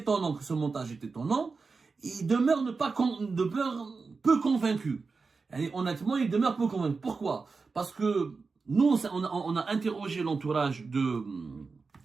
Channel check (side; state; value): left; quieter; 4.4 dB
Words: que ce montage est étonnant. Ils demeurent peu convaincus. Et honnêtement, ils demeurent peu convaincus. Pourquoi? Parce que nous, on a interrogé l'entourage de